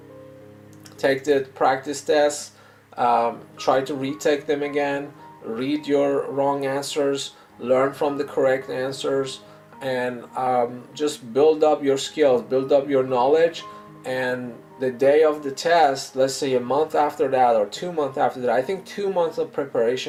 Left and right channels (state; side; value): identical; both; correlation 1.00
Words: Take the practice tests, try to retake them again, read your wrong answers, learn from the correct answers, and just build up your skills, build up your knowledge. And the day of the test, let's say a month after that or 2 months after that, I think 2 months of